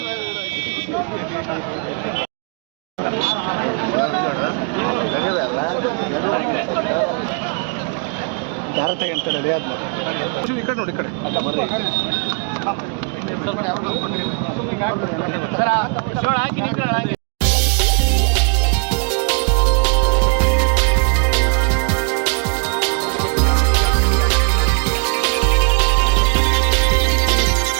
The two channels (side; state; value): left; quieter; 38.9 dB